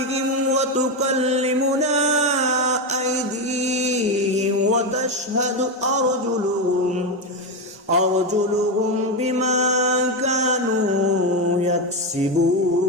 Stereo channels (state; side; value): normal; both; correlation 0.11